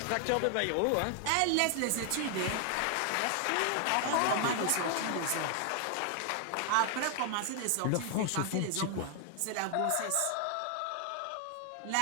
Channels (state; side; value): different; both; correlation 0.00